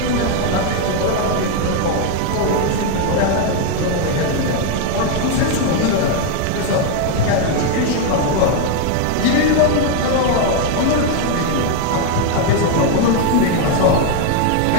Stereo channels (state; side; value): different; both; correlation 0.01